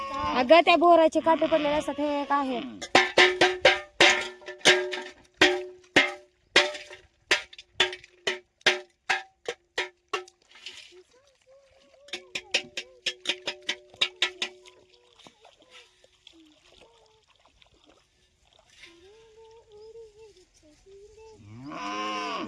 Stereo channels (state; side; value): identical; both; correlation 1.00